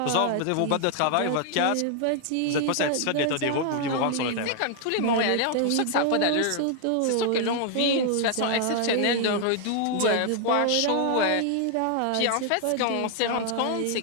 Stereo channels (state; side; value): different; both; correlation 0.00